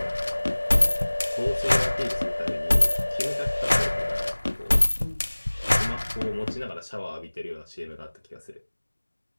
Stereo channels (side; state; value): both; inverted; correlation -1.00